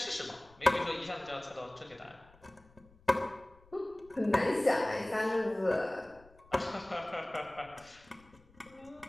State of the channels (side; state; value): left; noise; rumble, 27 dB below the sound